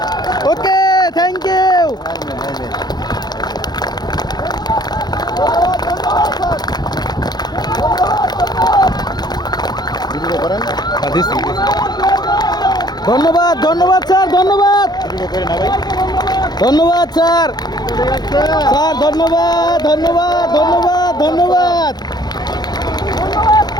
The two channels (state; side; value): late; right; 0.20 ms